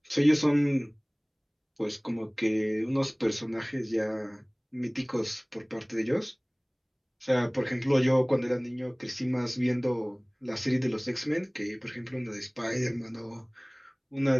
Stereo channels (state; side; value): identical; both; correlation 1.00